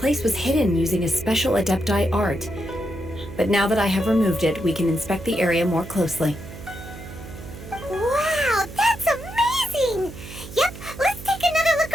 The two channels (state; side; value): noise; right; hum, 13 dB below the sound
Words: was hidden using a special Adepti art. But now that I have removed it, we can inspect the area more closely. Wow, that's amazing! Yep, let's take another look